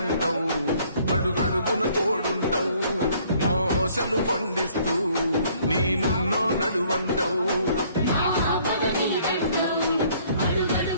అడుగడుగున తోడుంటావు, మా ఆశలు పండిస్తూ నేనున్నో నడువంటావు.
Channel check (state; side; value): inverted; both; correlation -0.61